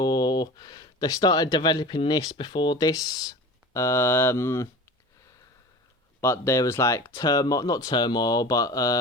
they started developing this before this. But there was like turmoil, not turmoil,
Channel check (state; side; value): normal; both; correlation 0.36